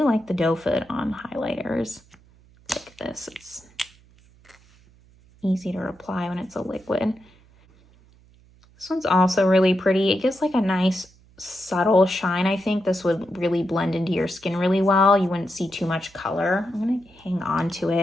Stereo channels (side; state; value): right; noise; hum, 28 dB below the sound